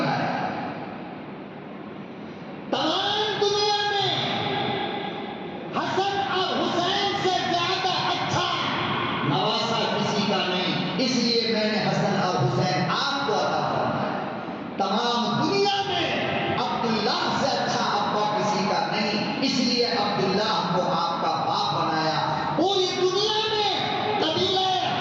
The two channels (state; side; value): identical; both; correlation 1.00